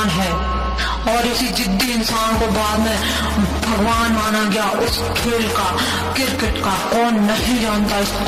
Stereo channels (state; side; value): identical; both; correlation 1.00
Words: है, और इसी जिद्दी इंसान को बाद में भगवान माना गया उस खेल का, क्रिकेट का। कौन नहीं जानता